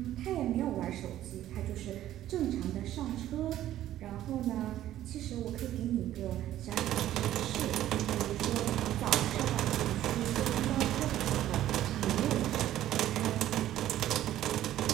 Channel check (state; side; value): quieter; left; 12.9 dB